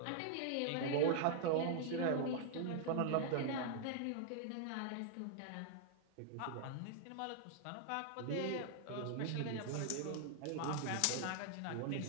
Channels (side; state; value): both; different; correlation 0.00